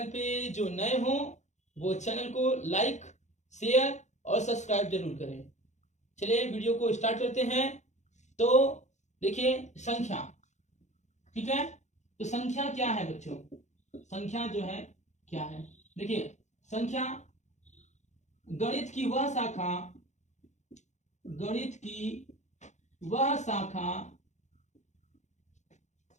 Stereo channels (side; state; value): right; late; 0.34 ms